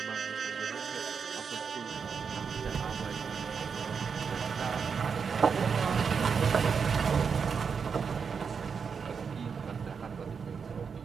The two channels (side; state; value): left; quieter; 6.1 dB